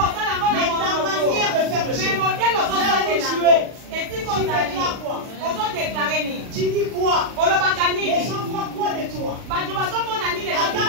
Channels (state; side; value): late; left; 40 ms